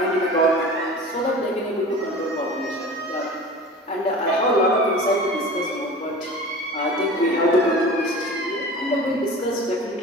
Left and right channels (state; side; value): normal; both; correlation 0.37